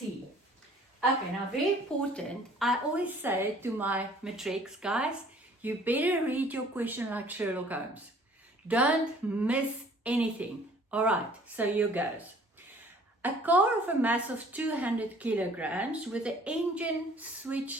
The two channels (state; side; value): normal; both; correlation 0.54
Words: Okay, now very important, I always say to my matrics guys, you better read your question like Sherlock Holmes. Don't miss anything. All right, so here goes. A car of a mass of 200 kilograms with the engine